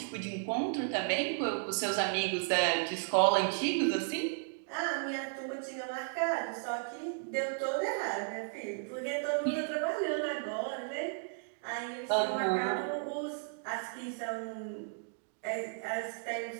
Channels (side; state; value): left; silent; digital silence